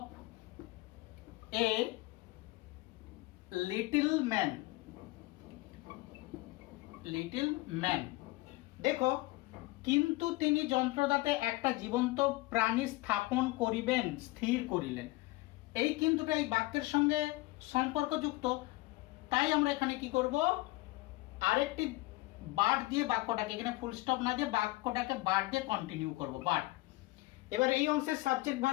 a little man. Little man. দেখো, কিন্তু তিনি যন্ত্রদাতে একটা জীবন্ত প্রাণী স্থাপন করিবেন, স্থির করিলেন। এই কিন্তুটা এই বাক্যের সঙ্গে সম্পর্কযুক্ত, তাই আমরা এখানে কি করব? আরেকটি বাট দিয়ে বাক্যটাকে, এখানে ফুল স্টপ না দিয়ে বাক্যটাকে বাট দিয়ে কন্টিনিউ করব, বাট। এবার এই অংশের সাবজেক্ট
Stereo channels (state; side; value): quieter; right; 20.8 dB